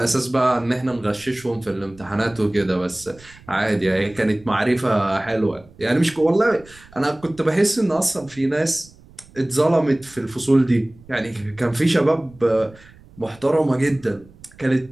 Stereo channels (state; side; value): noise; right; rumble, 24 dB below the sound